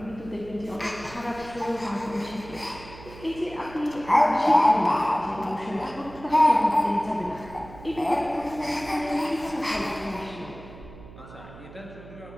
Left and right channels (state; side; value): noise; right; hum, 17 dB below the sound